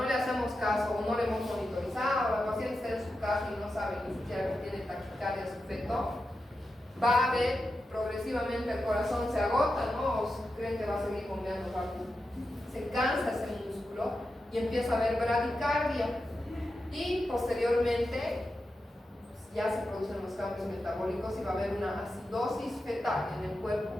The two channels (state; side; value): normal; both; correlation 0.90